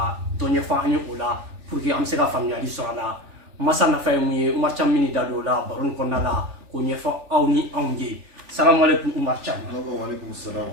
donye fa anyo ola pour que amsega familiali sala masa na fa mu marcham mini dado la baron konna la ko nyefa awni awnge. Assalamu alaikum marcham. Wa alaikum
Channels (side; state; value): left; late; 3.4 ms